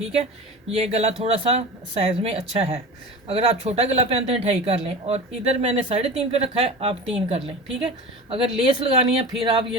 है, ये गला थोड़ा सा साइज़ में अच्छा है। अगर आप छोटा गला पहनते हैं 2.5 कर लें, और इधर मैंने 3.5 पे रखा है, आप 3 कर लें। ठीक है, अगर लेस लगानी है फिर आप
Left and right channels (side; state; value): both; normal; correlation 0.33